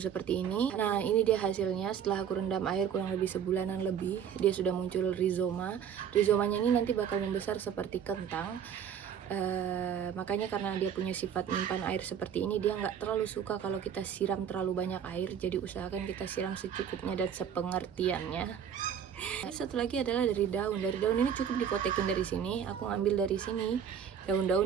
seperti ini. Nah, ini dia hasilnya setelah aku rendam air kurang lebih sebulanan lebih. Dia sudah muncul rizoma. Rizomanya ini nanti bakal membesar seperti kentang. Makanya karena dia punya sifat menyimpan air seperti ini, dia nggak terlalu suka kalau kita siram terlalu banyak air. Jadi usahakan kita siram secukupnya dan sepengertiannya. Satu lagi adalah dari daun. Dari daun ini cukup dipotekin dari sini. Aku ngambil dari sini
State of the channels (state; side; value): quieter; left; 8.3 dB